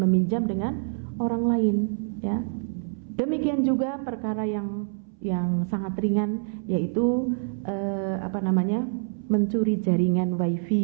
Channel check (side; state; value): left; silent; 59 dB below the other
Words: dengan orang lain ya. Demikian juga perkara yang sangat ringan, yaitu mencuri jaringan